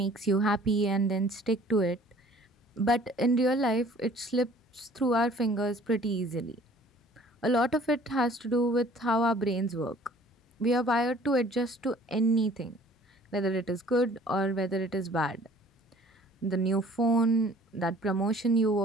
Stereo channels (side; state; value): both; normal; correlation 0.52